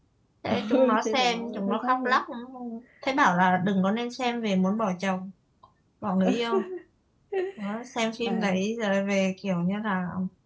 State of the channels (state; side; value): identical; both; correlation 1.00